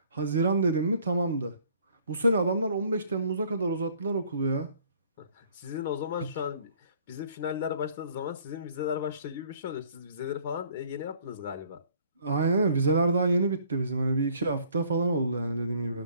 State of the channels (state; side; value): inverted; both; correlation -0.58